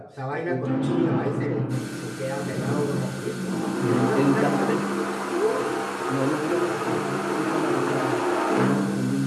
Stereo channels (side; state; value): both; identical; correlation 1.00